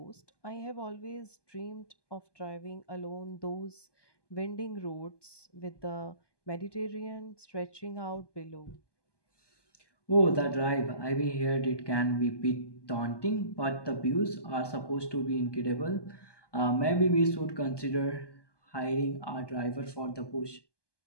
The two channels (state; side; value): late; right; 1.2 ms